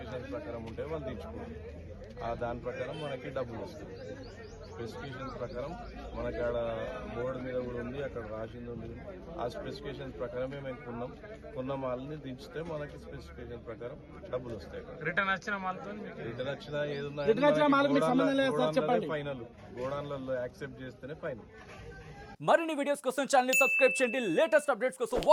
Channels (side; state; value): both; identical; correlation 1.00